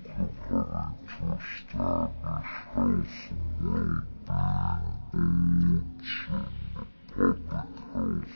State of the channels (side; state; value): both; inverted; correlation -1.00